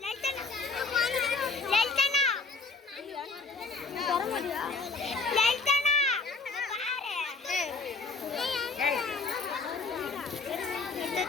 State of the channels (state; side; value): quieter; right; 4.1 dB